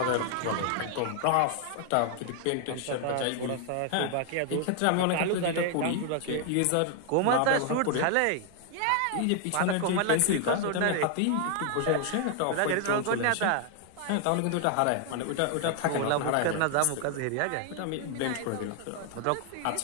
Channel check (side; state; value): both; different; correlation 0.00